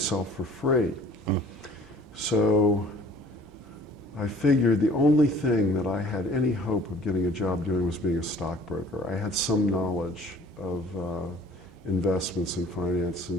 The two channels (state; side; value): normal; both; correlation 0.53